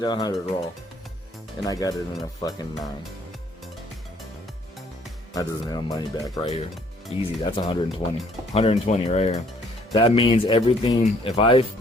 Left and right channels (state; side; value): normal; both; correlation 0.62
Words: 100 raw. And I got it in a fucking 9. That doesn't have money back right here. Easy, that's 120. 120 right here. That means everything, if I